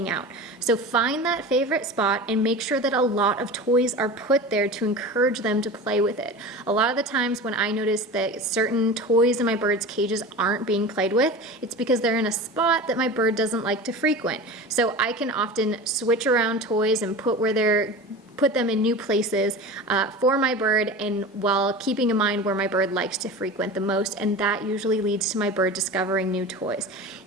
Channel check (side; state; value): both; normal; correlation 0.32